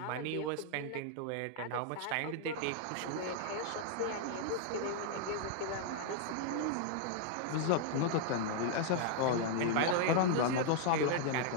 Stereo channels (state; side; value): different; both; correlation 0.00